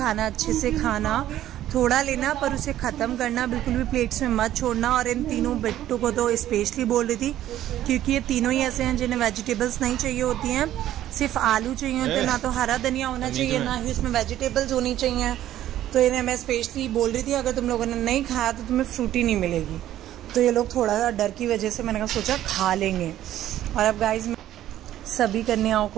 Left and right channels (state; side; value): quieter; left; 12.8 dB